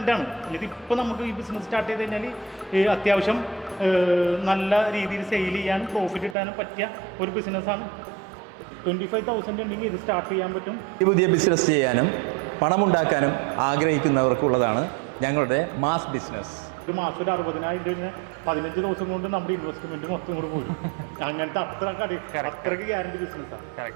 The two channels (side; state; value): left; drops out; at 6.4 s